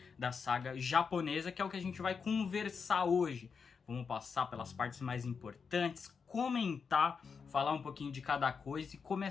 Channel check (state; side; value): quieter; right; 5.7 dB